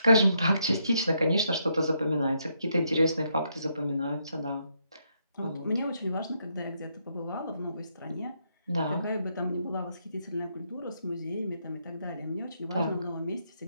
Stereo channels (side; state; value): both; inverted; correlation -0.77